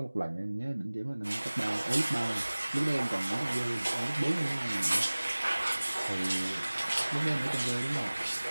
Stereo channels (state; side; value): inverted; both; correlation -1.00